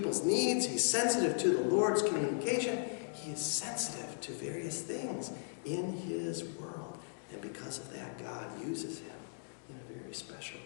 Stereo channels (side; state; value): right; silent; digital silence